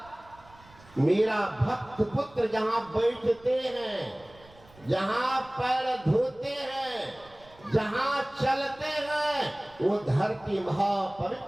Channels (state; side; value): noise; right; rumble, 25 dB below the sound